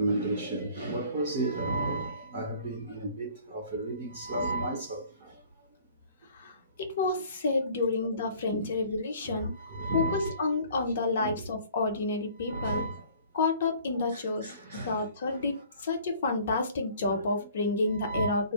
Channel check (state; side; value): inverted; both; correlation -0.53